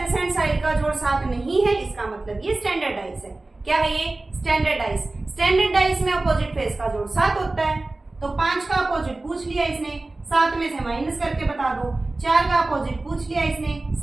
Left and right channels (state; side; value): quieter; left; 3.0 dB